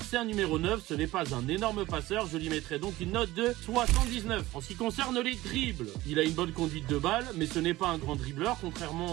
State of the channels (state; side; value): quieter; left; 17.8 dB